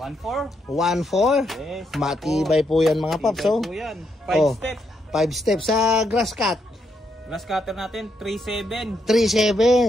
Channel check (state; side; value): normal; both; correlation 0.78